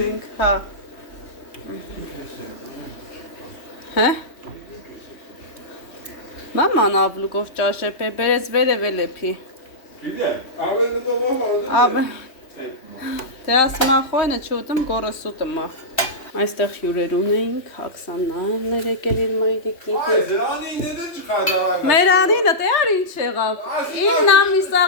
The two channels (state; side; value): late; right; 3.1 ms